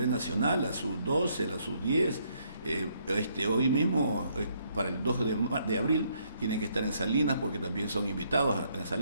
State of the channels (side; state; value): both; inverted; correlation -0.70